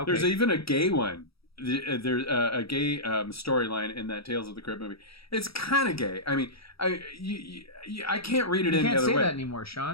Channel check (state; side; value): late; right; 0.76 ms